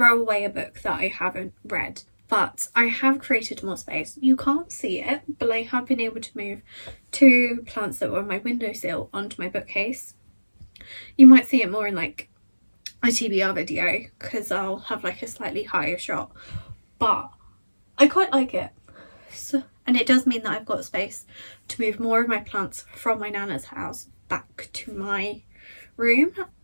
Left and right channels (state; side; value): inverted; both; correlation -1.00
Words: away a book that I haven't read, but I have created more space. You can't see it, but I have been able to move 2 plants that were on my windowsill onto my bookcase. You might see it more in like a TBR video because I'll have like a slightly higher shot, but I quite like it. And it does mean that I've got space to move more of my plants from my nana's house back to my room,